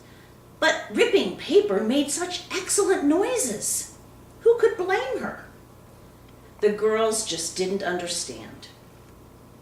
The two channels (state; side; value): identical; both; correlation 1.00